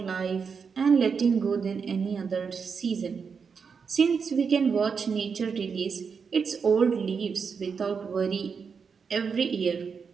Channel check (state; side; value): quieter; left; 5.9 dB